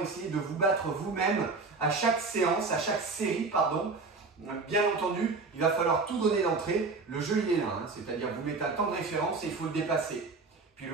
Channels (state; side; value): quieter; left; 4.0 dB